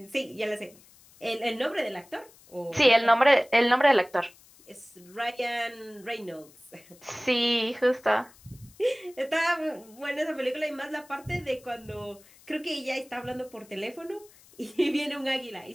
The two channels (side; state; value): left; noise; hiss, 26 dB below the sound